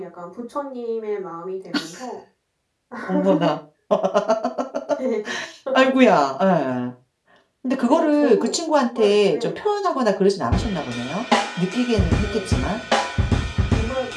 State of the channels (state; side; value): identical; both; correlation 1.00